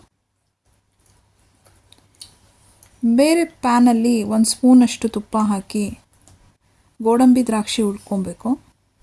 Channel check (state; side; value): identical; both; correlation 1.00